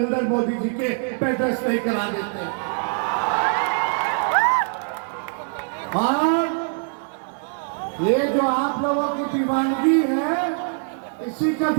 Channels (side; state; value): left; silent; 58 dB below the other